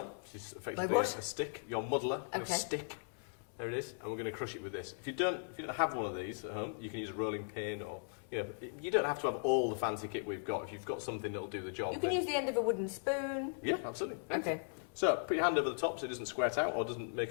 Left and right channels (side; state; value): right; silent; 53 dB below the other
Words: which is effectively a stick. Your muddler, your stick. There it is, and we're going to crush it with this. If you don't have one of these at home, you can use a rolling pin, or you don't have to have all the fancy kit we've got. If you've got something that'll do the job, you can use the end of a wooden spoon. Yeah, absolutely. Okay. So put your hand over the top so it doesn't squirt out or doesn't